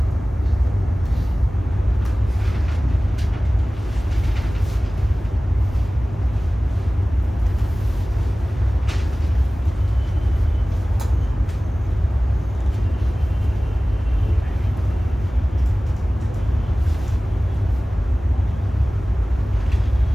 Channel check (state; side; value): normal; both; correlation 0.98